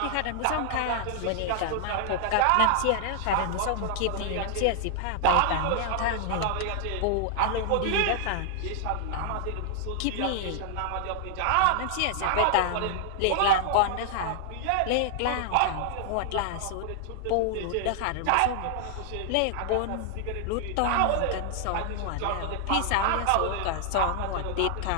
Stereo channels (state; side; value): different; both; correlation 0.00